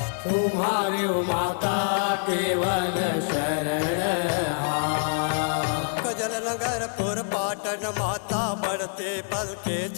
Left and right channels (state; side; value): silent; right; digital silence